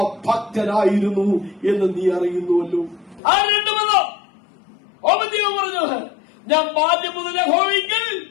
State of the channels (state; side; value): drops out; right; at 3.2 s